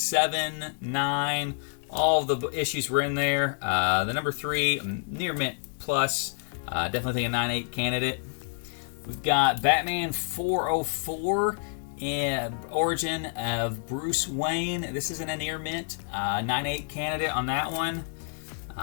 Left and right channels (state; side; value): silent; right; digital silence